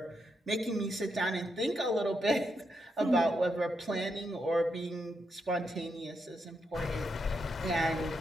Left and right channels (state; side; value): normal; both; correlation 0.82